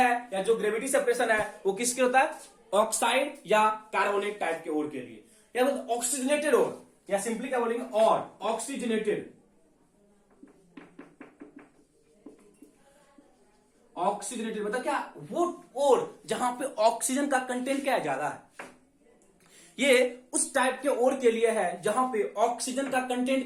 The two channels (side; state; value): both; identical; correlation 1.00